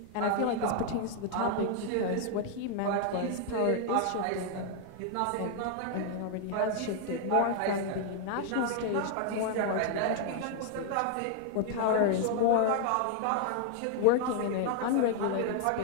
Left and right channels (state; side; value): different; both; correlation 0.00